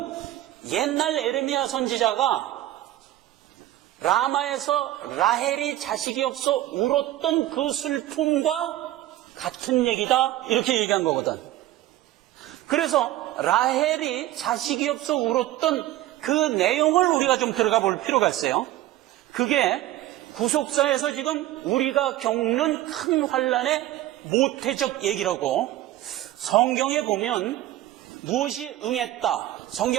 옛날 에레미야 선지자가 라마에서 라헬이 자식이 없어 울었던 그 슬픔과 같은 얘기다 이렇게 얘기한 거거든. 그래서 라헬이 자식이 없어 울었던 그 내용을 우리가 좀 들어가 볼 필요가 있어요. 그게 구속사에서 지금 우리가 겪는 큰 환란의 모태적 얘기라고. 성경에 보면 무엇이 응했다,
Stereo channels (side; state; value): left; quieter; 14.8 dB